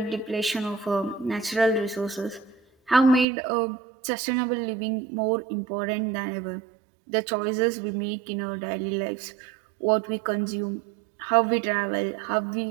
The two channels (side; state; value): left; drops out; at 3.2 s